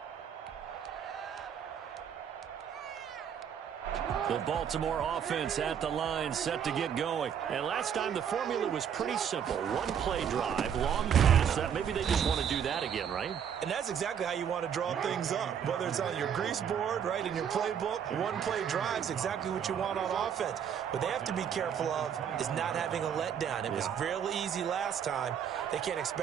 The Baltimore offense at the line, set to get going. And last time the formula was pretty simple. One play drive, long pass. Maybe they just want to do that again, right? And that's exactly how you want to draw things up. Whether it's on your grease board, right, in your playbook, one play drive is exactly what you want on offense. What they have to be careful of is not having a letdown. It was real easy last time. They can't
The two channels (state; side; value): quieter; left; 8.2 dB